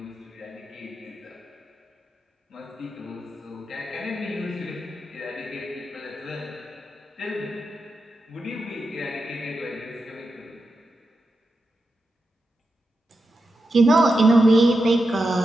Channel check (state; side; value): normal; both; correlation 0.89